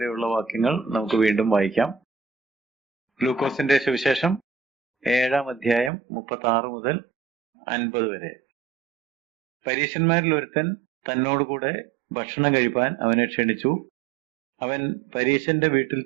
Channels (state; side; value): drops out; left; at 5.9 s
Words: വാക്യങ്ങൾ നമുക്ക് വീണ്ടും വായിക്കാം. ലൂക്കോസിന്റെ സുവിശേഷം 7-ാം അധ്യായം 36 മുതൽ 50 വരെ. പരീശന്മാരിൽ ഒരുത്തൻ തന്നോടുകൂടെ ഭക്ഷണം കഴിപ്പാൻ അവനെ ക്ഷണിച്ചു. അവൻ പരീശന്റെ വീട്ടിൽ